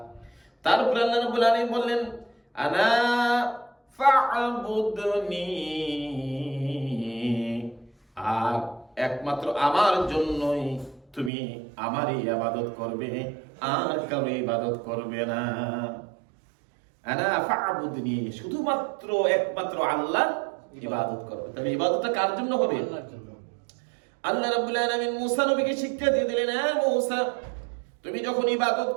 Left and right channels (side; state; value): left; drops out; at 11.3 s